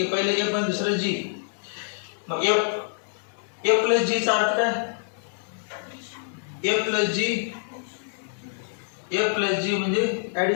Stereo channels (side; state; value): right; silent; digital silence